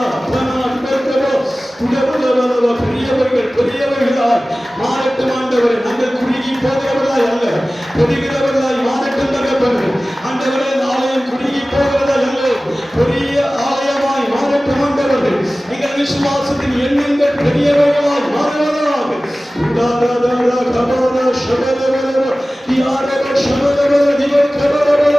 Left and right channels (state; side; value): normal; both; correlation 0.97